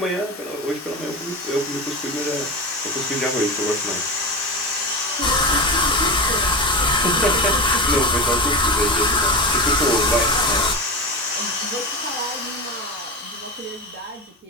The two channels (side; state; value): both; normal; correlation 0.23